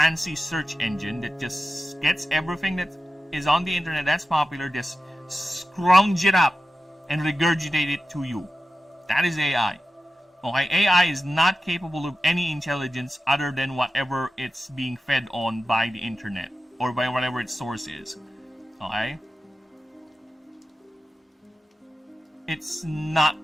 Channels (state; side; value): normal; both; correlation 0.93